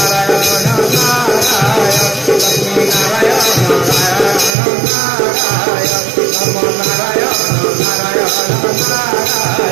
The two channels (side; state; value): left; drops out; at 4.5 s